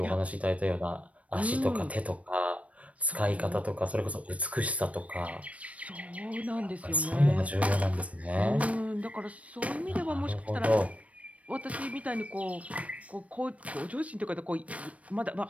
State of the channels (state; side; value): late; left; 0.065 ms